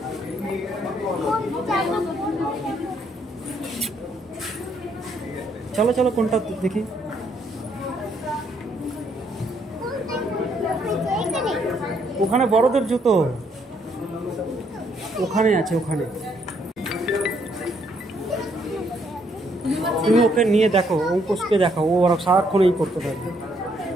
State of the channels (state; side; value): normal; both; correlation 0.71